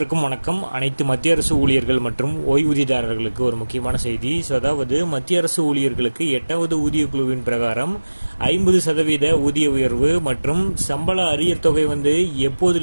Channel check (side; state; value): both; inverted; correlation -1.00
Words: வணக்கம். அனைத்து மத்திய அரசு ஊழியர்கள் மற்றும் ஓய்வூதியதாரர்களுக்கு ஒரு முக்கியமான செய்தி. அதாவது மத்திய அரசு ஊழியர்களுக்கு 8வது ஊதிய குழுவின் பிரகாரம் 50% ஊதிய உயர்வு மற்றும் சம்பள அரியர் தொகை